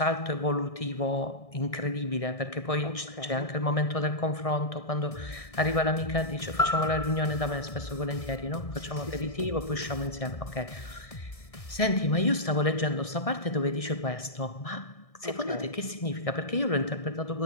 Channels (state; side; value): late; right; 1.6 ms